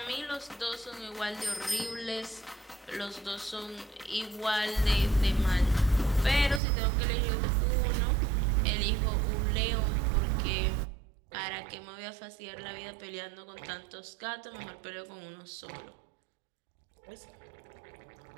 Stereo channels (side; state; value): left; drops out; at 6.6 s